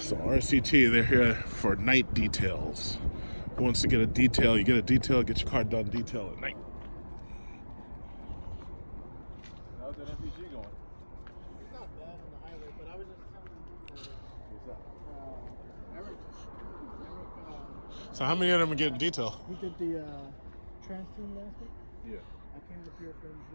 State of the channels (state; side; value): inverted; both; correlation -1.00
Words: RCT, they're here for night details. Who wants to get a detail? You get a detail, get your car done detail at night. How's that MPG going? It's not bad on the highway, but I was just telling Eric, So how many of them are getting detail? we did the trans tune last week. Yeah. I came up here for him